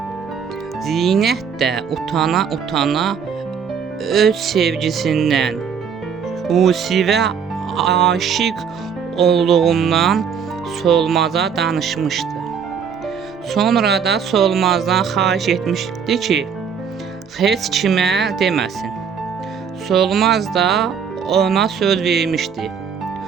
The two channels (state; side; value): quieter; left; 6.9 dB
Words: Zinət də utana öz sevgisindən, Yusifə aşiq olduğundan Solmaza danışmışdı. Sonra da Solmazdan xahiş etmişdi ki, heç kimə deməsin. Solmaz da ona söz vermişdi.